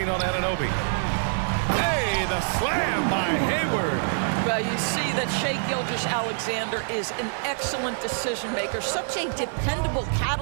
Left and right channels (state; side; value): silent; left; digital silence